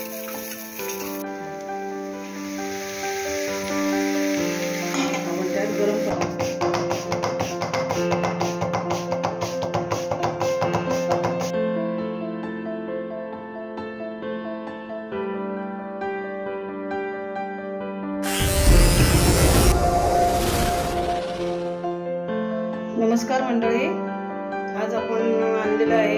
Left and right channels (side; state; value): both; identical; correlation 1.00